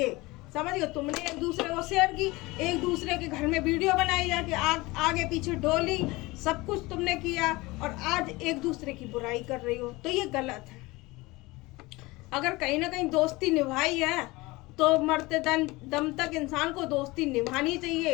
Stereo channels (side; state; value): right; quieter; 21.9 dB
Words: समझ गए। तुमने एक दूसरे को शेयर की, एक दूसरे के घर में वीडियो बनाई जाके, आगे पीछे डोली, सब कुछ तुमने किया, और आज एक दूसरे की बुराई कर रही हो, तो ये गलत है। अगर कहीं ना कहीं दोस्ती निभाई है तो मरते दम तक इंसान को दोस्ती निभानी